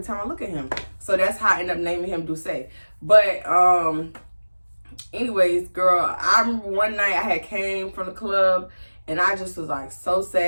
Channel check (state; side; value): inverted; both; correlation -1.00